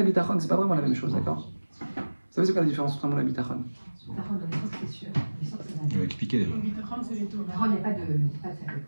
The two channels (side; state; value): both; inverted; correlation -1.00